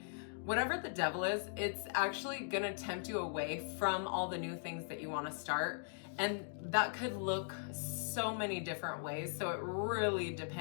whatever the devil is, it's actually gonna tempt you away from all the new things that you want to start. And that could look so many different ways. So it really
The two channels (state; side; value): silent; right; digital silence